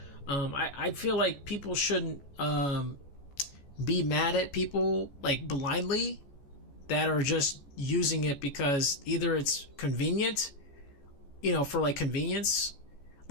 I feel like people shouldn't be mad at people like blindly that are just using it because either it's convenient, you know, for like convenience.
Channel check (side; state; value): right; late; 14 ms